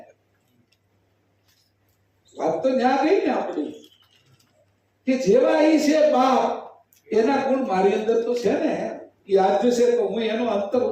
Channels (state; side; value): identical; both; correlation 1.00